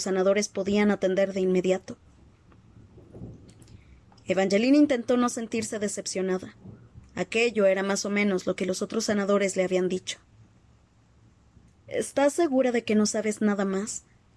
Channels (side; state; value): both; identical; correlation 1.00